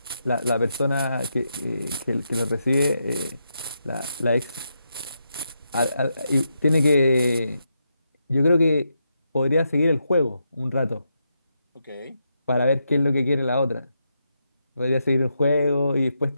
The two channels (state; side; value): inverted; both; correlation -0.83